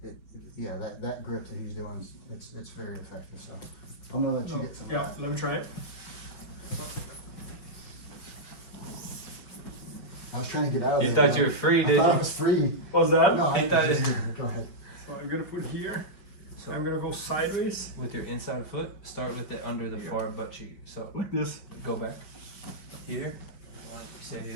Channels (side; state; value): right; late; 5.2 ms